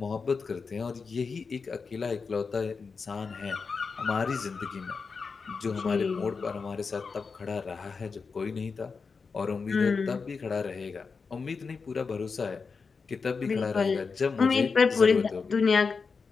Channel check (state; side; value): quieter; right; 5.0 dB